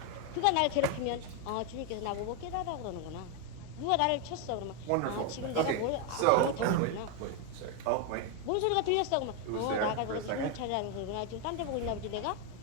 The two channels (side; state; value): both; different; correlation 0.01